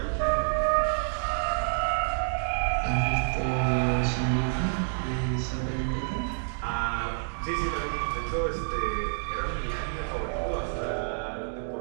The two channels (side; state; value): left; silent; digital silence